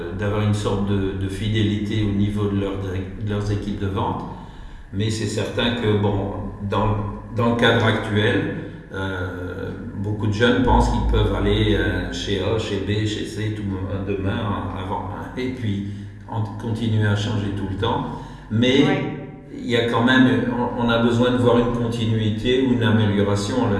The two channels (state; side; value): identical; both; correlation 1.00